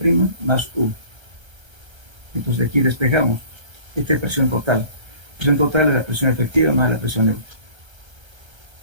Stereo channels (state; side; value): late; left; 1.3 ms